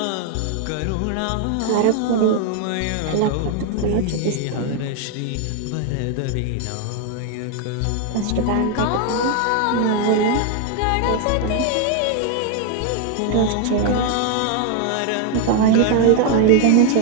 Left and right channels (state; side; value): different; both; correlation 0.00